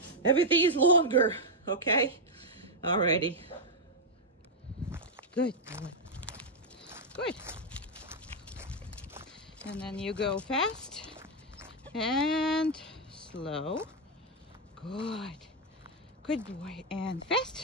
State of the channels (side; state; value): both; normal; correlation -0.01